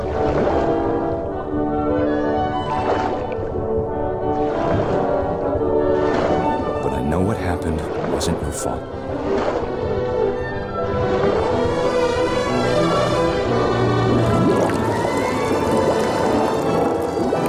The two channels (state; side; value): identical; both; correlation 1.00